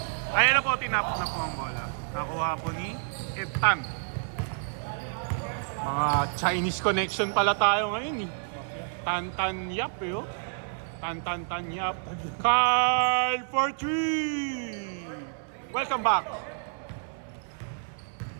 Ayan na po, tinapos na po ang bola. Nakuha po ni Eptan. Mga Chinese connection pala tayo ngayon eh. Tan Yap eh oh. Tan Yap. Carl for 3. Welcome back.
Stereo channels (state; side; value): silent; left; 59 dB below the other